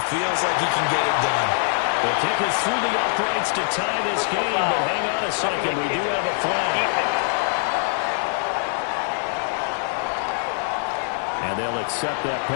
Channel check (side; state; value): right; silent; 63 dB below the other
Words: feels like he can get it done. The kick is through the uprights to tie this game, but hang on a second. We do have a flag. And they'll accept that